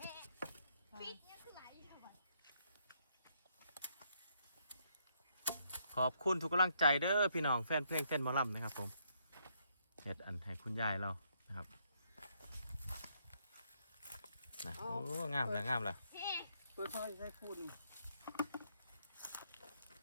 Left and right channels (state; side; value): inverted; both; correlation -0.73